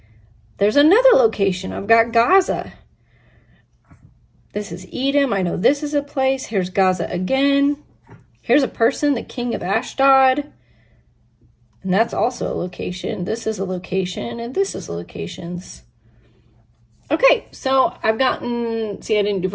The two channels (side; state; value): both; identical; correlation 1.00